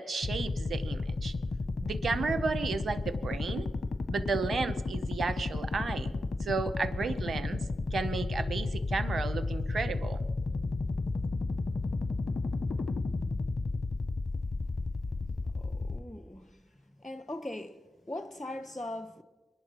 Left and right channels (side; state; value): both; normal; correlation 0.88